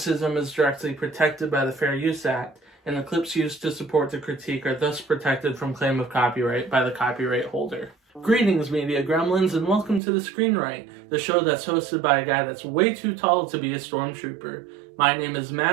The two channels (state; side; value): drops out; left; at 10.0 s